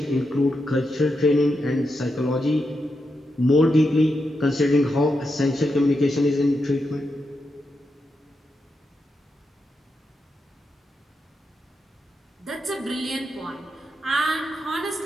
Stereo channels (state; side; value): normal; both; correlation 0.86